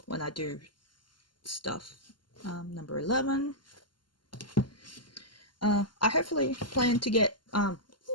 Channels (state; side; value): late; right; 0.71 ms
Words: when I do stuff. Number 11. I hopefully plan to get, number